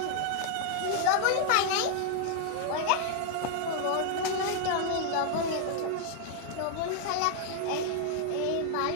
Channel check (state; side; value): different; both; correlation 0.00